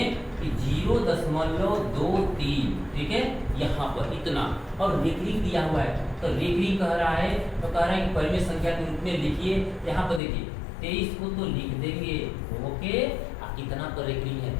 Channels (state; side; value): drops out; right; at 10.2 s